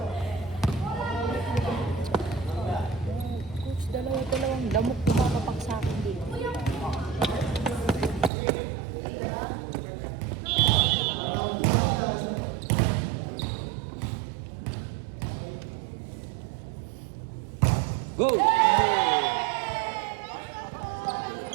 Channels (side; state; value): left; drops out; at 8.3 s